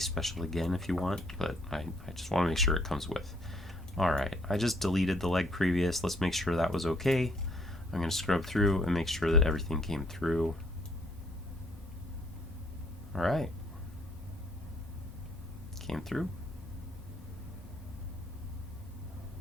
special again if you want, but I just want to make sure it comes with. Alright, I just deleted the leg previous. Let's make sure that was okay. I'm going to scrub through and make sure that everything came through. Alright. Came through.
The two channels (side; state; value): both; normal; correlation 0.65